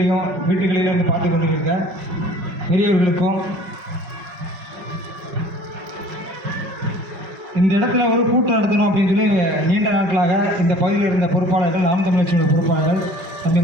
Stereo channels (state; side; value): late; left; 5.2 ms